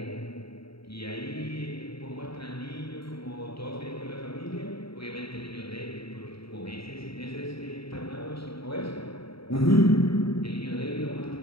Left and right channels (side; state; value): right; late; 0.76 ms